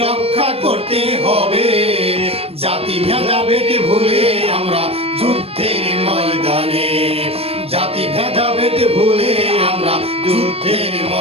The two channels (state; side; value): late; left; 0.28 ms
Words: রক্ষা করতে হবে। জাতি ভেদাভেদ ভুলে আমরা যুদ্ধের ময়দানে, জাতি ভেদাভেদ ভুলে আমরা যুদ্ধের